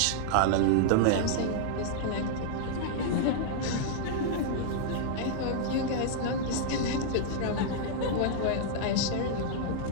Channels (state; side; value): different; both; correlation -0.01